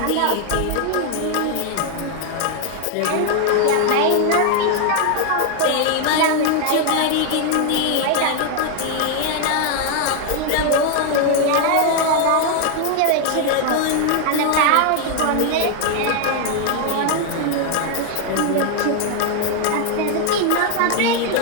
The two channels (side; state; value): both; different; correlation 0.00